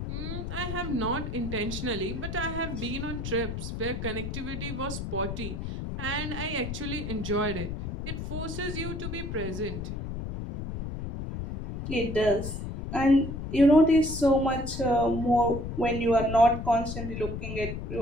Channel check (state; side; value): noise; left; rumble, 5 dB below the sound